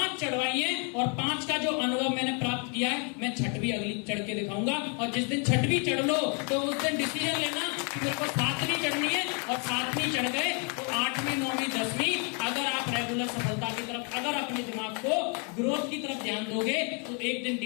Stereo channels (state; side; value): quieter; right; 36.6 dB